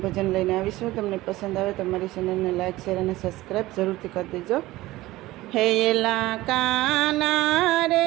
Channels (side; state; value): left; quieter; 17.9 dB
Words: ભજન લઈને આવીશું. તમને પસંદ આવે તો મારી ચેનલને લાઇક, શેર અને સબસ્ક્રાઈબ જરૂરથી કરી દેજો. હે એલા કાના